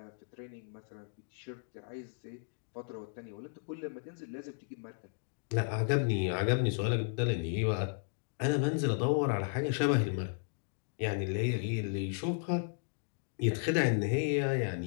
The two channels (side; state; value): right; silent; digital silence